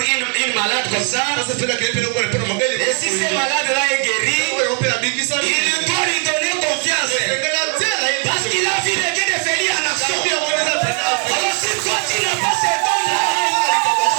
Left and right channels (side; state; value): left; quieter; 36.5 dB